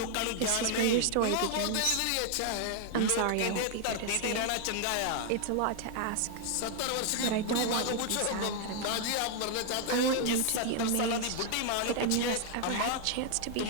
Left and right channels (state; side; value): different; both; correlation 0.00